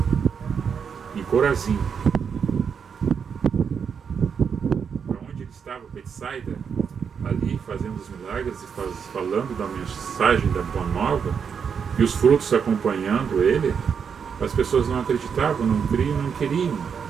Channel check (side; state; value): left; quieter; 6.8 dB